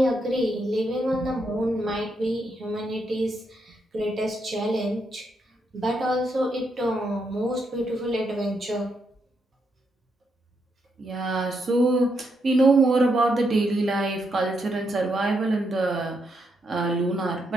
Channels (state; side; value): normal; both; correlation 0.80